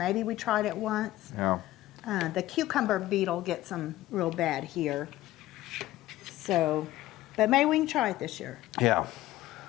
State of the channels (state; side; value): quieter; right; 15.7 dB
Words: we tried it once. Yeah. The cucumber beetle gets them real bad here. So, but maybe we can try it this year. Yeah.